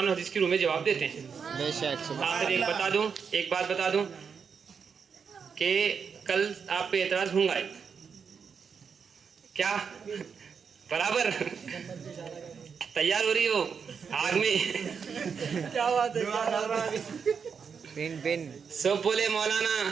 و حدیث کی روح میں جواب دیتے ہیں۔ آخر ایک بات بتا دوں کہ کل آپ پہ اعتراض ہوں گا، کیا برابر تیار ہو رہی ہو آگ میں؟ سب بولے مولانا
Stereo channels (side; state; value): left; quieter; 6.3 dB